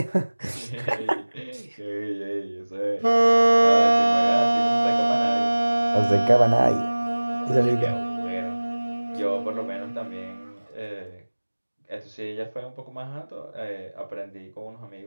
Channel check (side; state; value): both; inverted; correlation -1.00